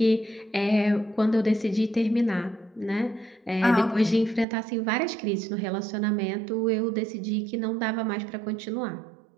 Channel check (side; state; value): left; drops out; at 4.5 s